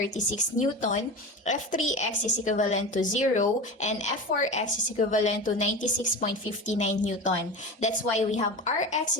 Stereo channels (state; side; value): normal; both; correlation 0.28